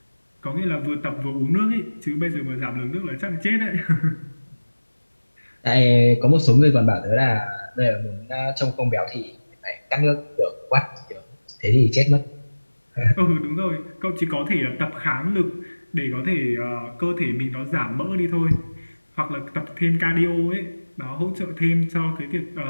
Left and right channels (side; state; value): both; inverted; correlation -1.00